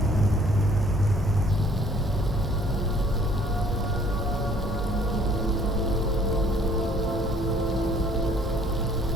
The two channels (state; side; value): normal; both; correlation 0.58